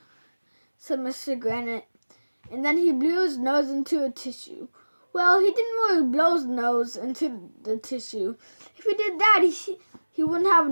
said Mr. Granite, and then he blew his nose into a tissue. Well, he didn't really blow his nose into the tissue. If he did that, he wouldn't have a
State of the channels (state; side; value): inverted; both; correlation -1.00